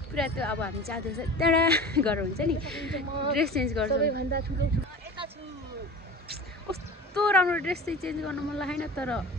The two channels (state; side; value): normal; both; correlation 0.36